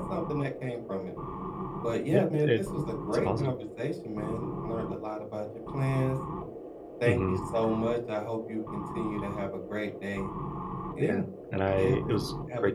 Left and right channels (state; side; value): identical; both; correlation 1.00